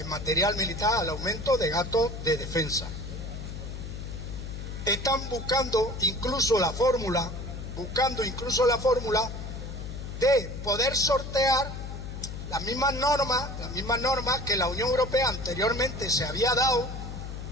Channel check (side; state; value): left; noise; hum, 8 dB below the sound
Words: material militar, al aumento de gastos de defensa. Están buscando incluso la fórmula de poder sortear las mismas normas que la Unión Europea anteriormente se había dado